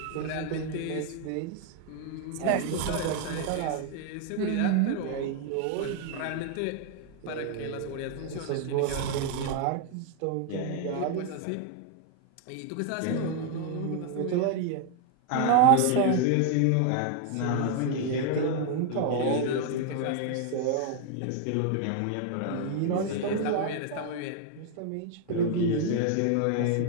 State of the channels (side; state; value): both; different; correlation 0.00